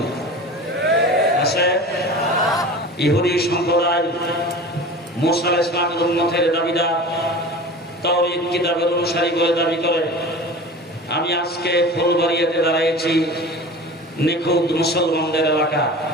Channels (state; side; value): normal; both; correlation 0.36